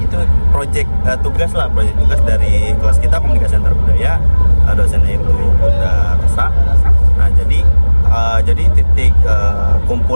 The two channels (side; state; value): both; inverted; correlation -1.00